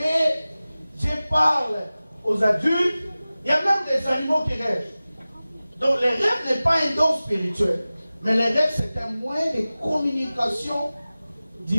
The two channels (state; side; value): inverted; both; correlation -0.97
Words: Dieu parle aux adultes. Il y a même des animaux qui rêvent. Donc les rêves n'est pas un don spirituel. Mais les rêves, c'est un moyen de communication